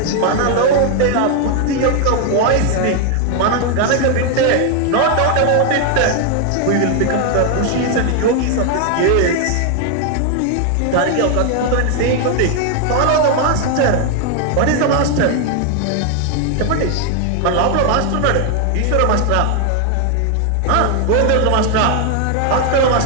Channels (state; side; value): different; both; correlation 0.00